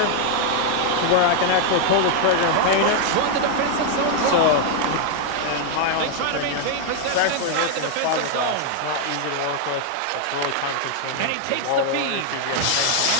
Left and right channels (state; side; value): different; both; correlation 0.00